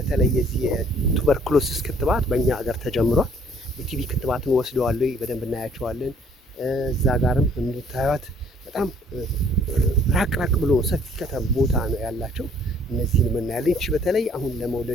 የዚህ የቱበርኩሎሲስ ክትባት በእኛ ሀገር ተጀምሯል። የቲቪ ክትባትን ወስደዋል ወይ በደንብ እናያቸዋለን። እዛ ጋርም እንድታዩት በጣም ራቅ ብሎ ሰፊ ከተማ ቦታ ነው ያላቸው። እነዚህን እናያለን። እቺ በተለይ አሁን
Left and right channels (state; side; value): normal; both; correlation 0.60